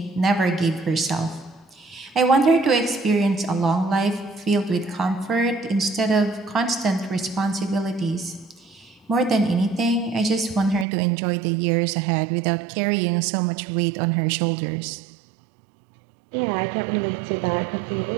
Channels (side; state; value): left; drops out; at 10.9 s